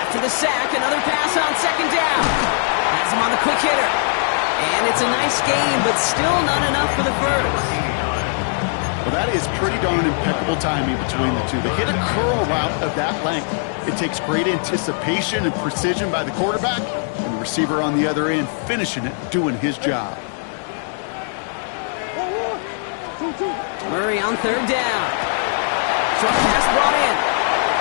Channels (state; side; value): silent; right; digital silence